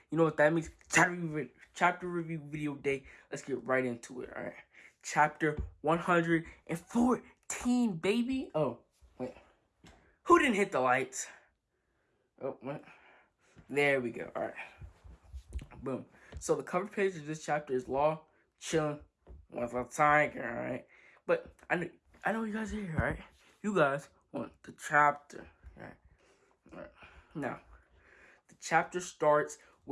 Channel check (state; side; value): identical; both; correlation 1.00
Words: You know what that means? Chapter review video day. Let's get right into it. All right, chapter 114, baby. Oh wait, who didn't hit the lights? Oh wait, there we go. All right, boom. So the cover page of this chapter is Law chilling with a tiger. All right, but I know you guys are here. All right, you guys want the chapter. All right. Now, the chapter starts